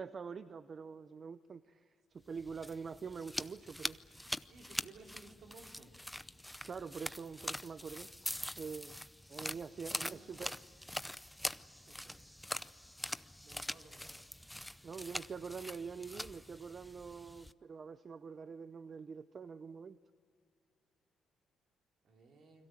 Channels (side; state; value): both; normal; correlation 0.94